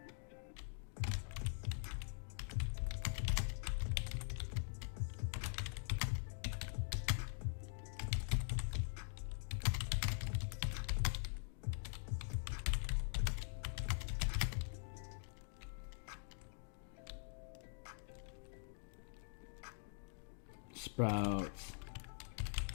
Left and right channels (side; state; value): right; silent; digital silence